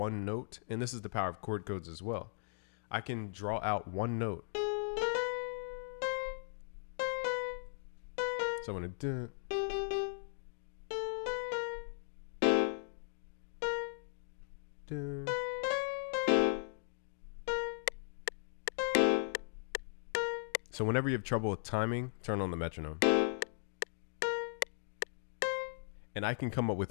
note, and this is the power of chord codes as well. I can draw out one note. So I'm going to So whenever you have trouble with timing, turn on the metronome. And I can come up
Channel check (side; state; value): right; silent; digital silence